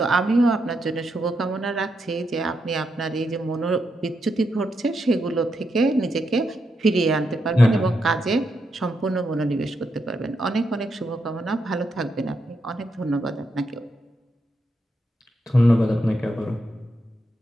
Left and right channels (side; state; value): both; normal; correlation 0.82